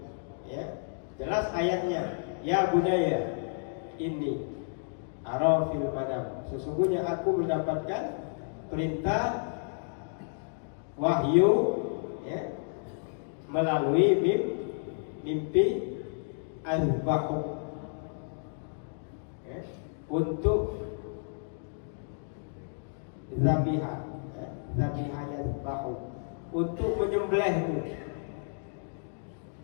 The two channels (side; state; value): right; silent; digital silence